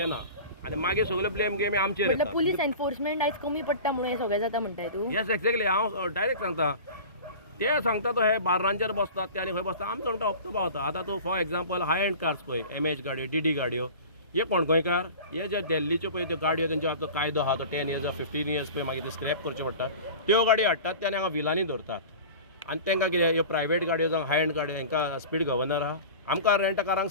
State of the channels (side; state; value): both; inverted; correlation -0.37